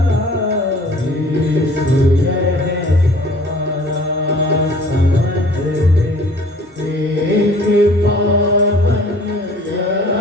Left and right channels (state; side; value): normal; both; correlation 0.51